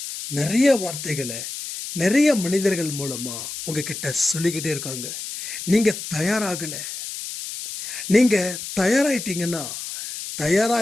நிறைய வார்த்தைகளை நிறைய மனிதர்கள் மூலமாக உங்ககிட்ட சொல்லிக்கிட்டே இருக்காங்க. நீங்கள் தயாராகலை. நீங்கள் தயாராகிட்டீங்கன்னா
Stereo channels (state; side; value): noise; left; hiss, 8 dB below the sound